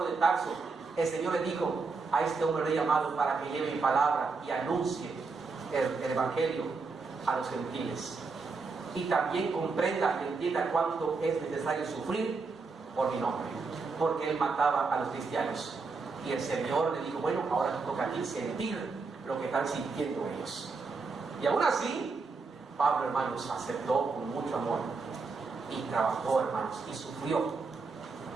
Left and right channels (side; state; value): left; quieter; 4.4 dB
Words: de Tarso, el Señor le dijo: a este hombre le he llamado para que lleve mi palabra y anuncie el evangelio a los gentiles, y también comprenda y entienda cuánto es necesario sufrir por mi nombre, porque él mataba a los cristianos. Y el Señor le dijo: bueno, ahora te toca a ti sentir lo que están sintiendo ellos. Y aún así, Pablo, hermanos, aceptó con mucho amor y trabajó, hermanos, y sufrió.